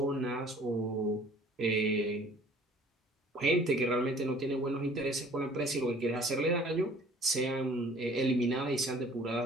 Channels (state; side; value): normal; both; correlation 0.52